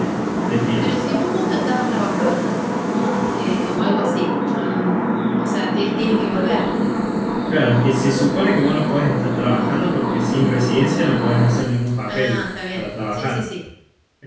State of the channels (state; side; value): identical; both; correlation 1.00